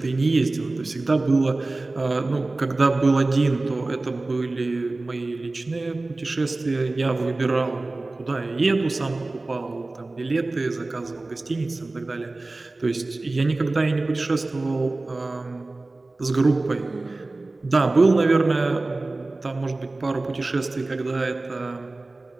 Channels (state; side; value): quieter; left; 3.1 dB